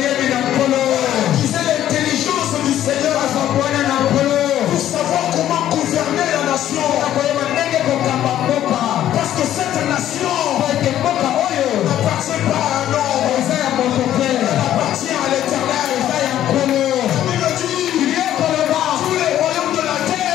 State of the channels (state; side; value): quieter; right; 12.0 dB